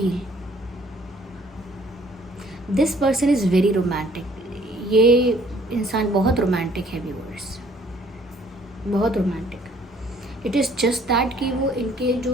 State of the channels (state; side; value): normal; both; correlation 0.60